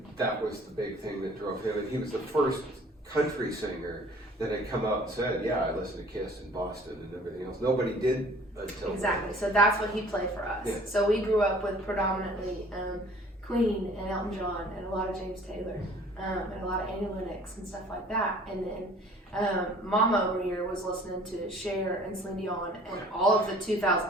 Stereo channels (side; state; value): both; normal; correlation 0.51